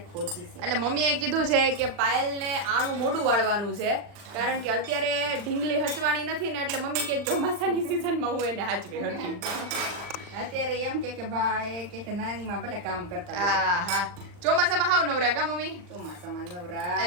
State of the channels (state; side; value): late; left; 39 ms